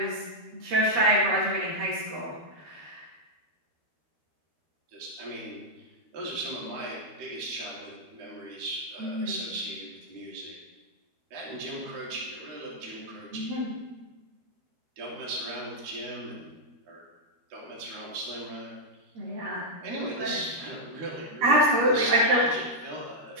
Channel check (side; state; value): left; late; 13 ms